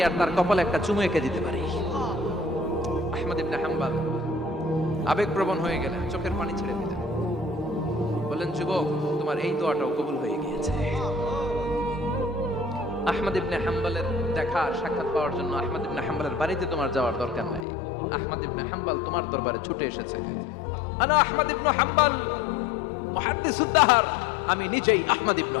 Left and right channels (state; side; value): drops out; right; at 17.7 s